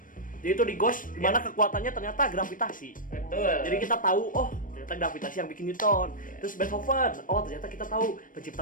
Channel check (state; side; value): late; right; 0.39 ms